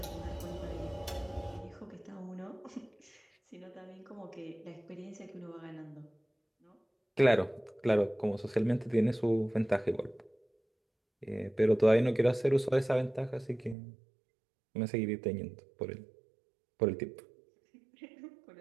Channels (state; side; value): drops out; left; at 13.8 s